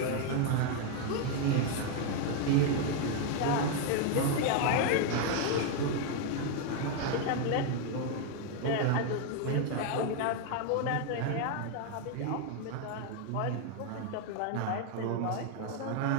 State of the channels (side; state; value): both; different; correlation 0.01